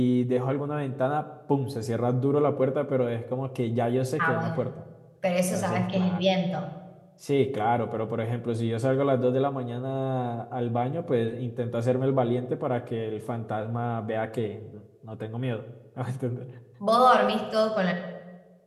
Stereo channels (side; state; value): both; identical; correlation 1.00